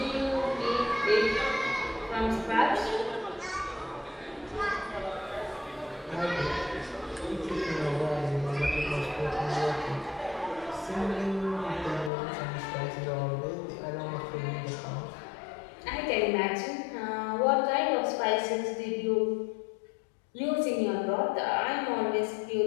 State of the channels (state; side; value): drops out; right; at 12.1 s